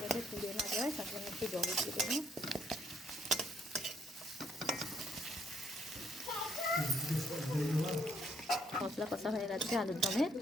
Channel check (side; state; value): both; normal; correlation 0.69